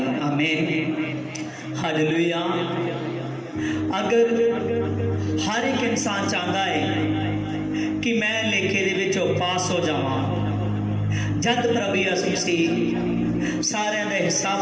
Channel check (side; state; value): both; identical; correlation 1.00